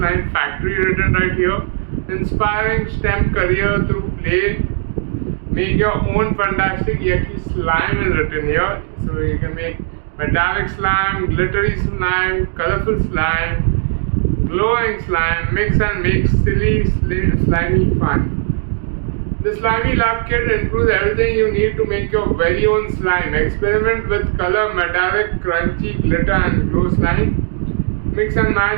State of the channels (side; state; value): left; silent; digital silence